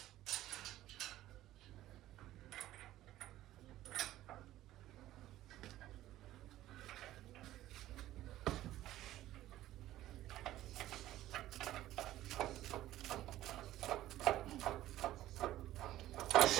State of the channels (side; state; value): left; quieter; 14.5 dB